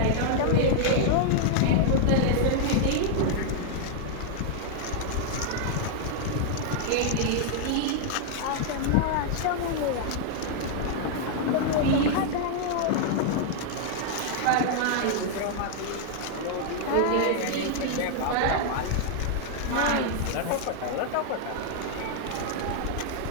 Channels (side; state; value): both; different; correlation -0.01